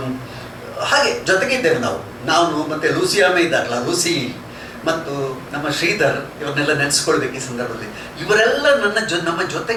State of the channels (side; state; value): both; identical; correlation 1.00